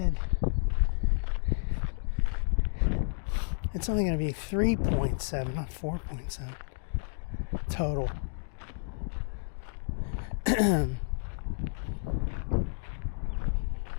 it's only going to be 3.7, not 4.7 total.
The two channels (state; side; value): silent; right; digital silence